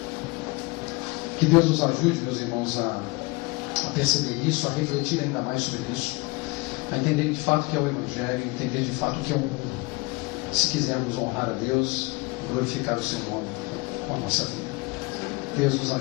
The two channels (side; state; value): right; quieter; 26.0 dB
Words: Que Deus nos ajude, meus irmãos, a perceber isso, a refletir ainda mais sobre isso, a entender de fato o que é o Evangelho, entender de fato o que é o mundo, se quisermos honrar a Deus, glorificar o seu nome com a nossa vida. Deus nos